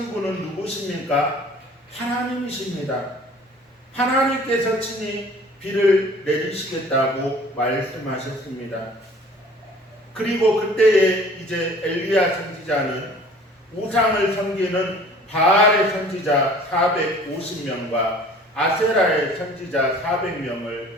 분은 누구십니까? 하나님이십니다. 하나님께서 친히 비를 내리시겠다고 말씀하셨습니다. 그리고 그때에 이제 엘리야 선지자는 우상을 섬기는 바알의 선지자 450명과 아세라의 선지자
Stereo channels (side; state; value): both; normal; correlation 0.49